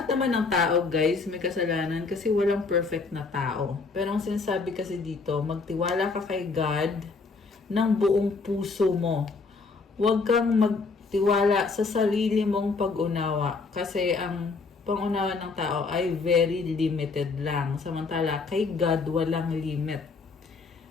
naman ng tao, guys, may kasalanan kasi walang perfect na tao. Pero ang sinasabi kasi dito, magtiwala ka kay God ng buong puso mo. Huwag kang magtiwala sa sarili mong pag-unawa kasi ang pangunawa ng tao ay very limited lang. Samantala, kay God, walang limit.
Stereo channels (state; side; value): quieter; right; 4.3 dB